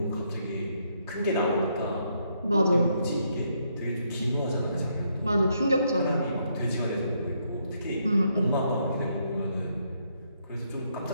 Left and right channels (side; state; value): both; inverted; correlation -0.75